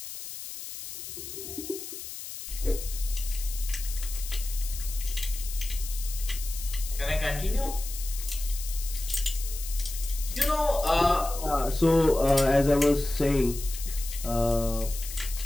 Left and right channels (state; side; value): noise; left; hiss, 10 dB below the sound